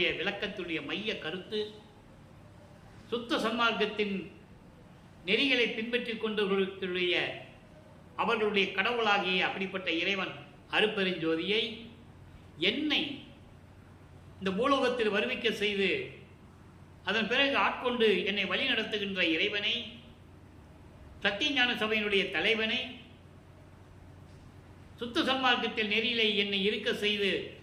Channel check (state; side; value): identical; both; correlation 1.00